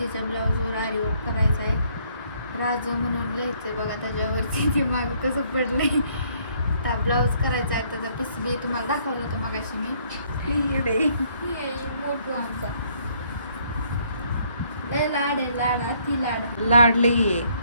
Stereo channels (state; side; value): inverted; both; correlation -0.66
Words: ब्लाऊजवर आरी वर्क करायचा आहे. राजू म्हणून लिहायचंय बघा त्याच्यावरती. ते मागं कसं पडलंय. त्या ब्लाऊज करायचा आहे. त्याचा पीस बी तुम्हाला दाखवलं होतं मगाशी मी. मोठू आमचा लय लाड आहे, लाड अति लाड. लाड लई आहे,